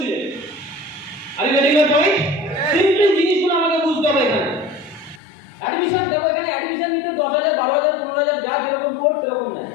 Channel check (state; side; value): drops out; right; at 5.2 s